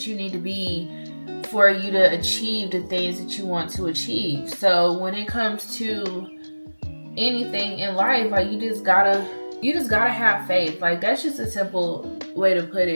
you need to be for you to achieve the things that you want to achieve. So when it comes to anything in life, like, you just gotta have faith. Like, that's just a simple way to put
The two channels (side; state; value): both; inverted; correlation -1.00